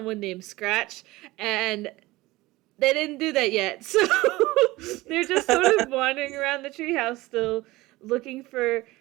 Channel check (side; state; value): left; quieter; 19.6 dB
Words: named Scratch, and they didn't do that yet. So they're just sort of wandering around the treehouse still, looking for